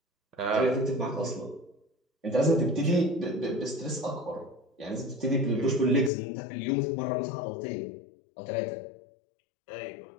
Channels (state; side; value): drops out; right; at 6.1 s